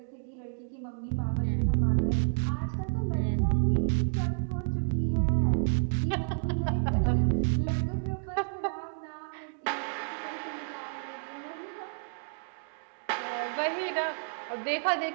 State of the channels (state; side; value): silent; left; digital silence